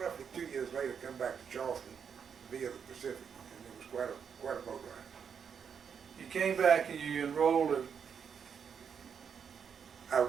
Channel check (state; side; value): quieter; left; 7.1 dB